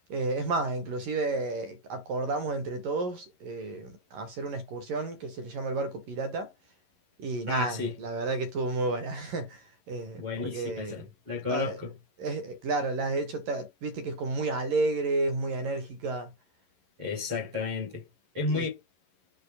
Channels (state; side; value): late; left; 11 ms